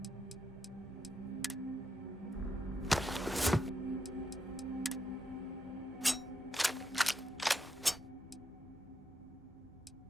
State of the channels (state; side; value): normal; both; correlation 0.82